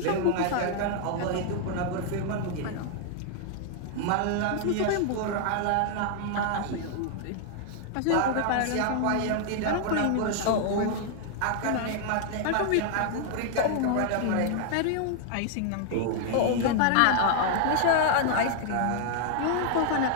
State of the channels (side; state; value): both; different; correlation 0.00